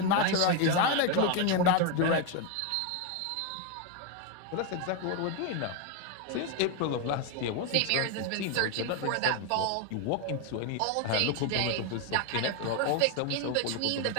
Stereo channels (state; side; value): different; both; correlation 0.01